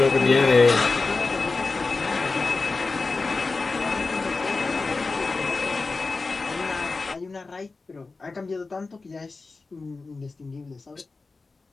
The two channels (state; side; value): quieter; right; 3.8 dB